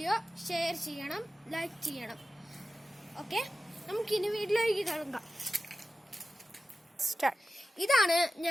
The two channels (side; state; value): both; normal; correlation 0.93